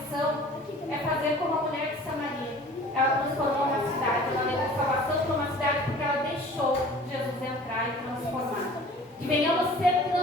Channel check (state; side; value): normal; both; correlation 0.46